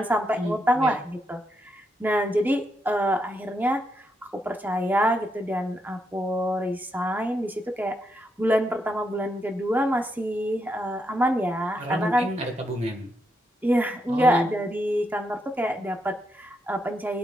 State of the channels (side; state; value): both; normal; correlation 0.81